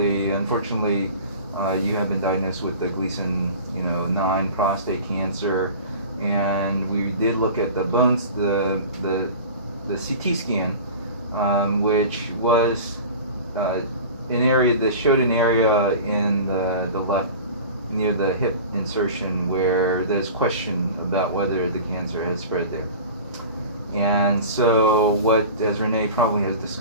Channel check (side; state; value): both; inverted; correlation -0.37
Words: unfortunately, you have been diagnosed with the Gleason 9 prostate cancer, and we did look at the bones, the CT scan, which was an area that showed an area in the left near the hip insertion where there's question about whether the cancer has spread there. And so what, as Renee probably has